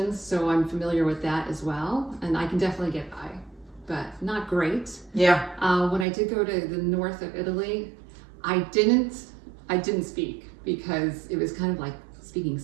so I'm familiar with that as well, and I can definitely get by, but not great. Yeah. When I did go to the north of Italy, I didn't speak because it was kind of like speaking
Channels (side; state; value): left; drops out; at 6.1 s